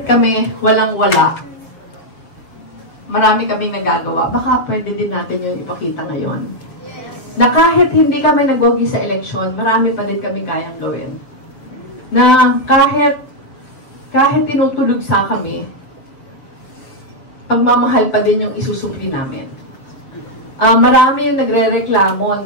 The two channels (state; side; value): late; right; 7.3 ms